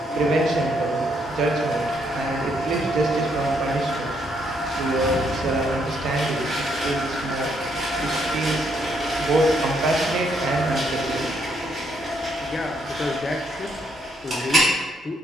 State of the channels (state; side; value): normal; both; correlation 0.73